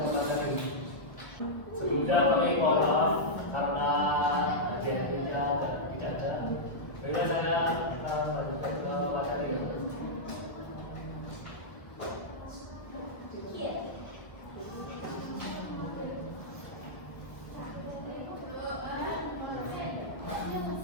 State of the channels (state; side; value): late; right; 1.1 ms